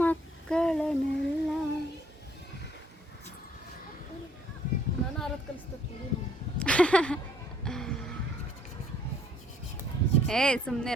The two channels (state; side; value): normal; both; correlation 0.63